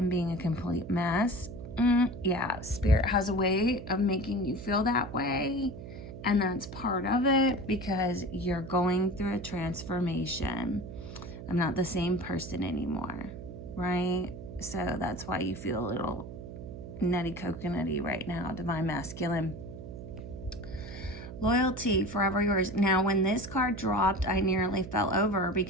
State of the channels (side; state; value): right; noise; hum, 11 dB below the sound